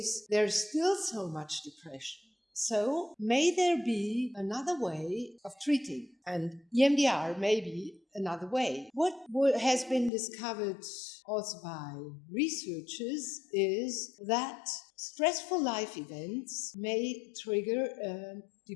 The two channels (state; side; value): drops out; right; at 10.1 s